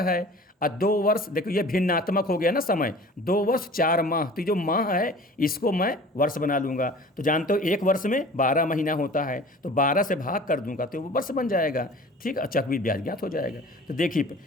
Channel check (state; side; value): normal; both; correlation 0.44